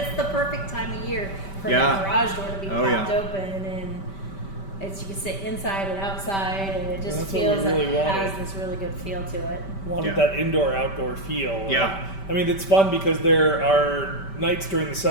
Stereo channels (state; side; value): late; right; 5.1 ms